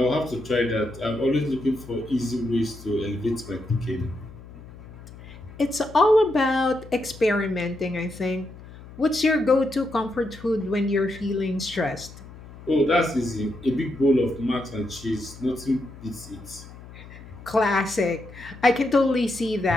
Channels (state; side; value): noise; left; hum, 17 dB below the sound